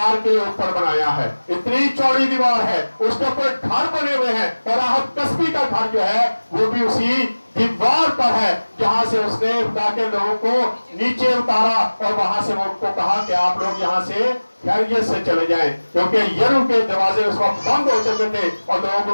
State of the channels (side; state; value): both; inverted; correlation -1.00